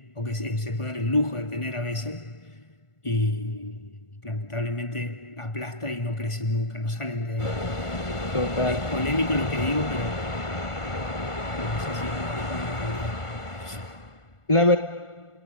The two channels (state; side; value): late; right; 1.4 ms